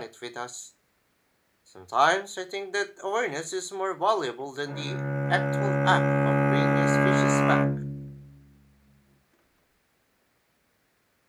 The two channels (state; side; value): identical; both; correlation 1.00